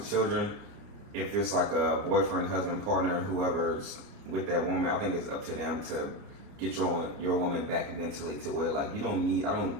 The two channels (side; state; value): left; late; 29 ms